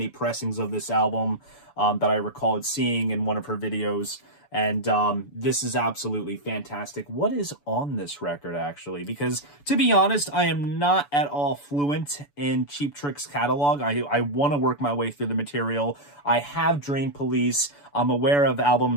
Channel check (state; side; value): late; right; 6.9 ms